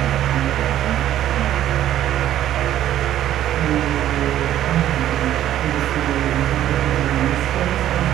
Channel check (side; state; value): left; quieter; 12.1 dB